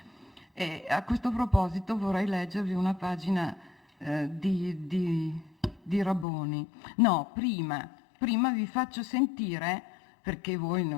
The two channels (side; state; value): right; drops out; at 6.2 s